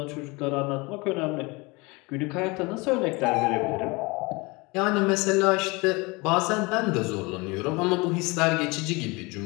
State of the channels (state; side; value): quieter; right; 25.7 dB